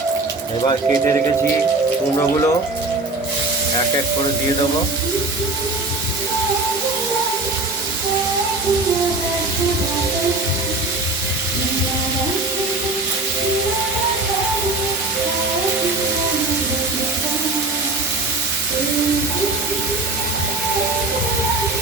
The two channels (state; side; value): quieter; left; 3.0 dB